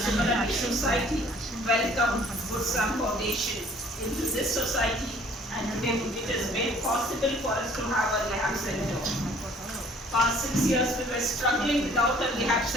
society, welcome Good Sam Foundation into this society, and today it is made possible for us to have a rehab center. Past 6 years we were struggling without a rehab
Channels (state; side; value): normal; both; correlation 0.56